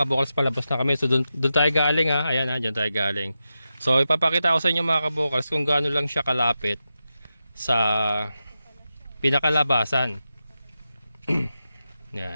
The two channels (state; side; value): inverted; both; correlation -0.90